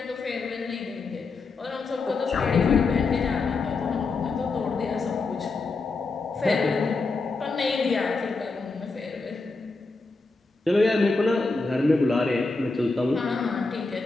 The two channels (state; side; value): quieter; right; 3.9 dB